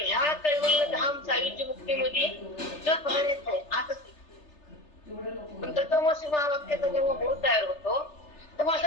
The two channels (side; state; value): right; late; 3.3 ms